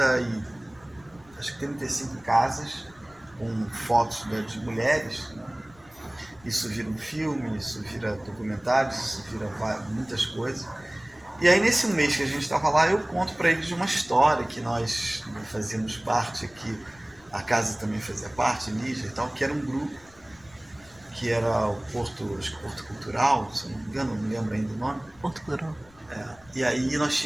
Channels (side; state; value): left; noise; rumble, 27 dB below the sound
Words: casas com fotos de mulheres, né? Isso vira um filme, isso vira documentários, isso vira muitas coisas. E aí nesse mês que a gente estava lá, eu conto para eles de uma história que nós fazíamos parte aqui, a casa também fazia parte, Lígia e tal, que era um grupo, que era o Porto Cultural, se não me engano, não me lembro ainda o nome. Porto Cultural. E aí nós